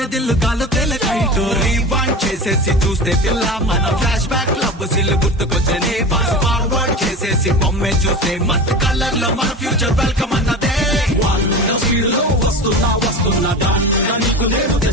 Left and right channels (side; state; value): both; normal; correlation 0.30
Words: దిల్ కాలు తెలకైటు రీవాండ్ చేసేసి చూస్తే పిల్ల మన ఫ్లాష్ బ్యాక్ లవ్ సిల్ గుర్తుకొచ్చని ఫాస్ట్ ఫార్వర్డ్ చేసేసి బొమ్మే చూస్తే మస్త్ కలర్ లో మన ఫ్యూచర్ వెల్కమ్ అన్నదే స్పీడ్ లో వస్తున్నా వస్తున్నా దాంట్లో నీకు నేను